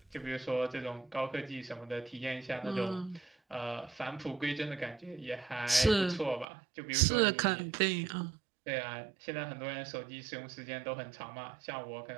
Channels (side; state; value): left; drops out; at 6.5 s